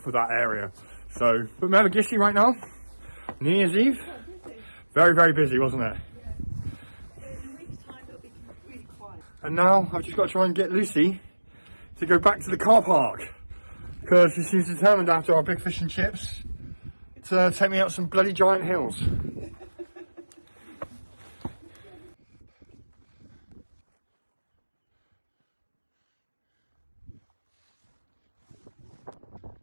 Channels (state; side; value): inverted; both; correlation -1.00